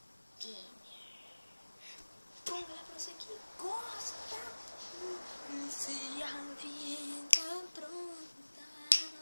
Gamer. Bom, galera, pra você que gosta, se a vida pronta.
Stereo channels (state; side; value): inverted; both; correlation -1.00